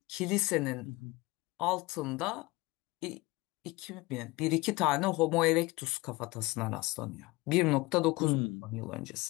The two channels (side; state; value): right; quieter; 22.1 dB